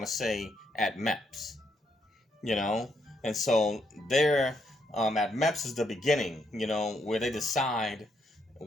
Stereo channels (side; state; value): both; normal; correlation 0.76